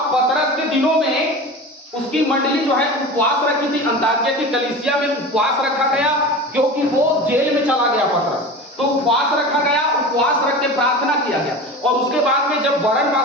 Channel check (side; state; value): both; normal; correlation 0.32